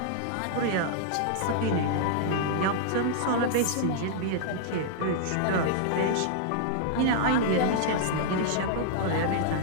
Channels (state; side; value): different; both; correlation -0.01